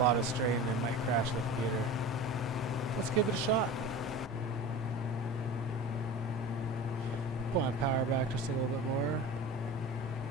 of strain and it might crash the computer. Let's give it a shot. Pull my power back just a little bit more.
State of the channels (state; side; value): normal; both; correlation 0.33